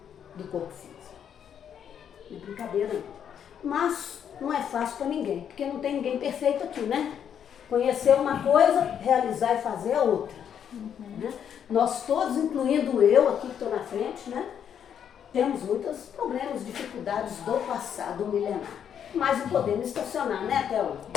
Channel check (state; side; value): quieter; right; 8.6 dB